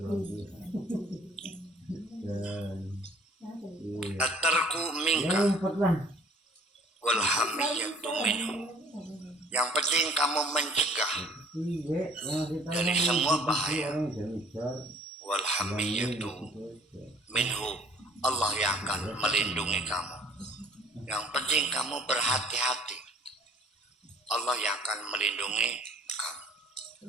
At-tarku minka wal hamiyatu minhu, yang penting kamu mencegah dari semua bahaya. Wal hamiyatu minhu, Allah yang akan melindungi kamu. Yang penting kamu berhati-hati, Allah yang akan melindungi kamu.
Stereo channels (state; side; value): normal; both; correlation 0.54